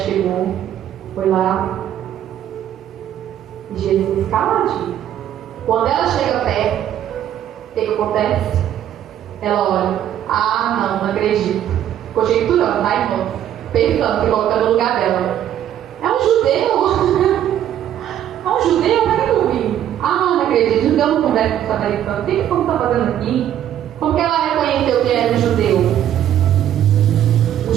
foi lá. E Jesus caladinho. Quando ela chega perto, o que acontece? Ela olha, não acredito. Conjecturando, tá, irmão? Pensando, se colocando no lugar dela. É um judeu. É um judeu, para que eu vim? Não acredito, judeu não conversa com o samaritano. O que você está fazendo aqui? Como que ela reconheceu que era um judeu? Os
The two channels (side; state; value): left; quieter; 10.9 dB